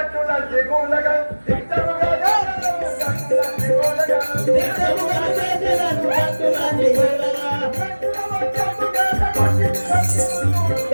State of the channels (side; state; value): both; inverted; correlation -1.00